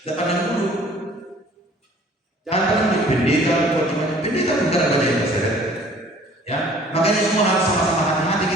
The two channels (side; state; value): both; normal; correlation 0.53